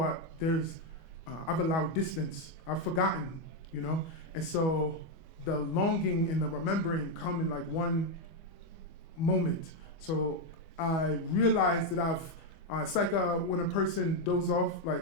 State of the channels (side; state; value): right; late; 25 ms